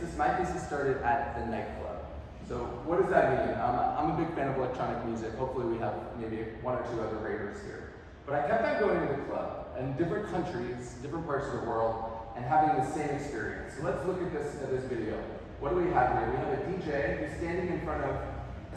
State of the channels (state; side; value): identical; both; correlation 1.00